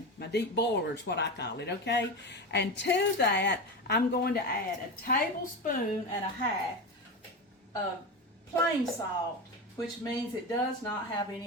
My deep boiler is what I call it, okay? And to that, I'm going to add a tablespoon and a half of plain salt, which means it does not have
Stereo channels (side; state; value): both; normal; correlation 0.22